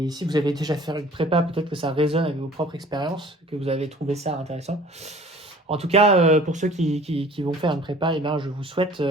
si vous avez déjà fait une prépa, peut-être que ça résonne avec vos propres expériences, que vous avez trouvé ça intéressant. En tout cas, pour ceux qui vont faire une prépa, eh ben, je vous souhaite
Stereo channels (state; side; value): normal; both; correlation 0.49